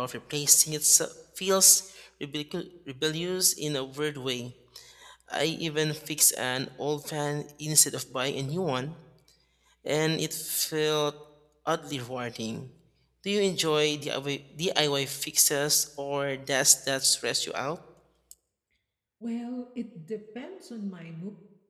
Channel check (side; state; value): both; identical; correlation 1.00